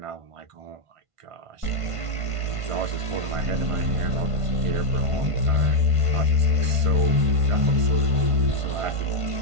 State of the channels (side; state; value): left; late; 1.5 ms